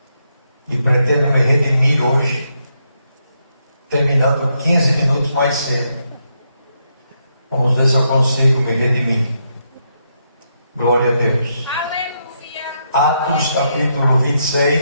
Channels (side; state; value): both; inverted; correlation -0.80